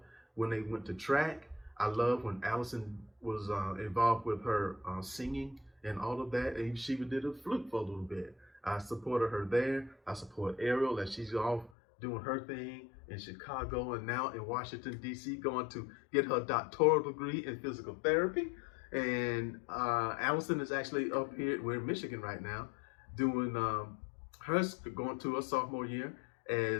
when they went to track. I love when Allison was involved with her singing and all of that, and she did a flute for a little bit. I supported her there. I support Ariel as she's off doing her thing in Chicago and now in Washington, D.C., going to get her doctoral degree in physical therapy. And Allison is actually up here, we're in Michigan right now, doing going to her sophomore year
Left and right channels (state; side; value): drops out; right; at 11.7 s